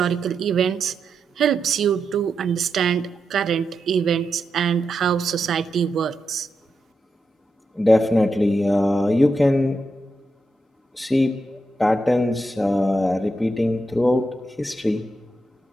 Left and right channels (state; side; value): normal; both; correlation 0.86